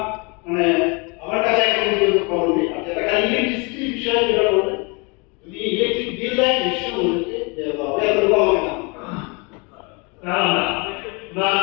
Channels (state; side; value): quieter; right; 30.5 dB